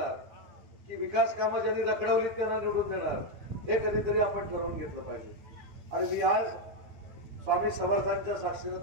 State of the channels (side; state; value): left; late; 9.4 ms